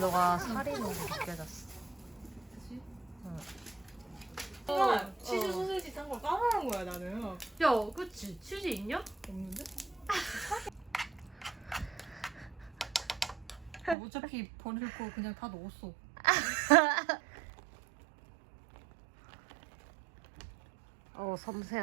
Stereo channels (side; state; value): left; drops out; at 14.0 s